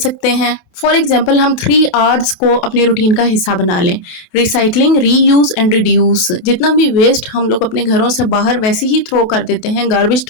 हैं। फॉर एग्जाम्पल, हम 3 Rs को अपने रूटीन का हिस्सा बना लें। Recycling, reuse and reduce. जितना भी वेस्ट हम लोग अपने घरों से बाहर वैसे ही थ्रो कर देते हैं, गार्बेज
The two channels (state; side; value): late; right; 28 ms